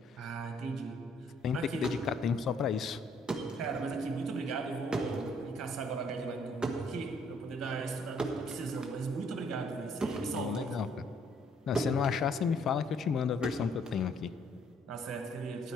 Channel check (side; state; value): both; normal; correlation 0.65